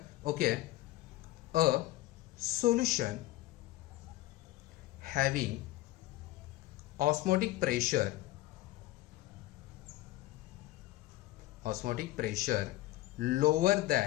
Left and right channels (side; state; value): right; quieter; 17.0 dB